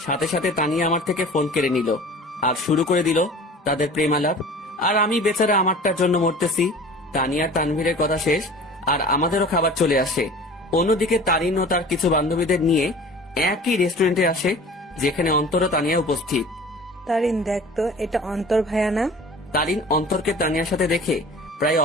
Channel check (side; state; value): both; normal; correlation 0.42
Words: সাথে সাথে তানিয়া আমার থেকে ফোন কেড়ে নিল, আর শুরু করে দিল তাদের প্রেমালাপ। আর আমি বেচারা আমারটার জন্য মরতেছি। তানিয়া তানভীরের কথা শেষ, আর আমাদেরও খাবার চলে আসে। অন্যদিকে তারিন ও তার কিছু বান্ধবীদের নিয়ে একই রেস্টুরেন্টে আসে, যেখানে অন্তর ও তানিয়া উপস্থিত। তারিন, দেখ তো, এটা অন্তর ভাইয়া না? তারিন অন্তরকে তানিয়ার সাথে দেখে প্রায়